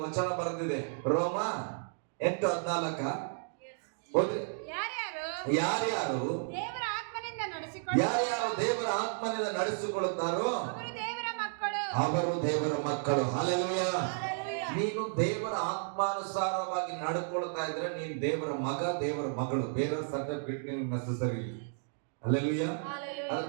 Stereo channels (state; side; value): silent; left; digital silence